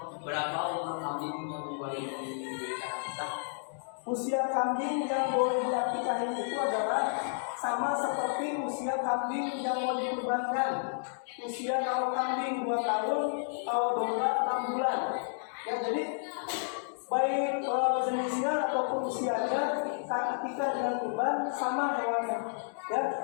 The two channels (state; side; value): silent; right; digital silence